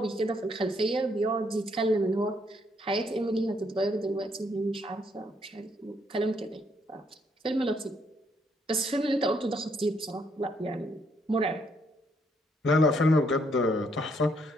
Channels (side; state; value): both; normal; correlation 0.72